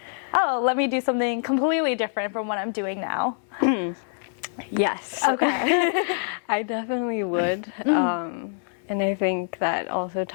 oh, let me do something completely different from what I'm doing now. Yes. Okay. I definitely would. And I think that also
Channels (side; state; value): right; silent; 57 dB below the other